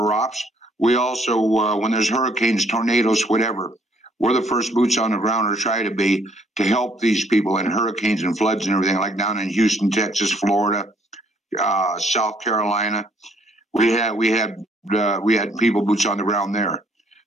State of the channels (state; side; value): normal; both; correlation 0.65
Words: ops. We also, when there's hurricanes, tornadoes, whatever, we're the first boots on the ground, or try to be, to help these people in hurricanes and floods and everything, like down in Houston, Texas, Florida, South Carolina. We had people boots on the ground there.